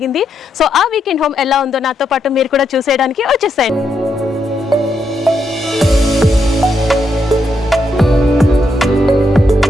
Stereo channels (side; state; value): both; normal; correlation 0.80